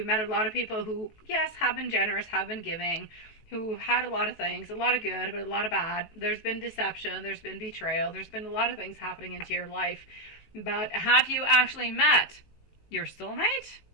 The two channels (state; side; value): late; right; 19 ms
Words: met a lot of people who, yes, have been generous, have been giving, who had a lot of things, a lot of good, but a lot of bad. There's been deception, there's been betrayal, there's been a lot of things happening into your life. But have you actually met your soulmate?